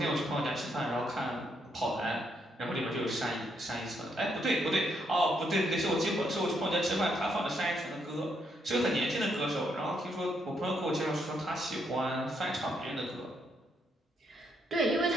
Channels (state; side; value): normal; both; correlation 0.76